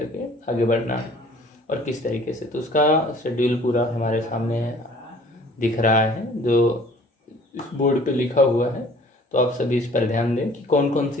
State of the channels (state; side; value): normal; both; correlation 0.52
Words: के आगे बढ़ना है और किस तरीके से। तो उसका शेड्यूल पूरा हमारे सामने दिख रहा है जो इस बोर्ड पे लिखा हुआ है। तो आप सभी इस पर ध्यान दें कि कौन कौन